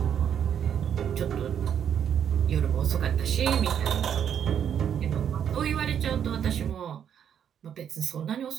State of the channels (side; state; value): left; quieter; 8.8 dB